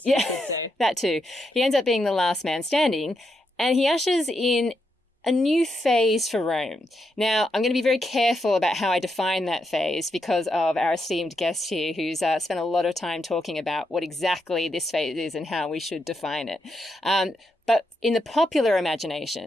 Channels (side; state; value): both; normal; correlation 0.82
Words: you could say. That too. He ends up being the last man standing, and he ushers in a new phase for Rome. Now, I'm going to be very careful about how I define that phase because of our esteemed guest here who's spent a lot of time talking about what exactly this phase is and how we should define it. But in the popular